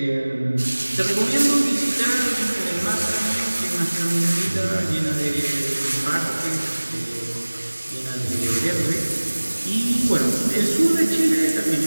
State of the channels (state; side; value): inverted; both; correlation -1.00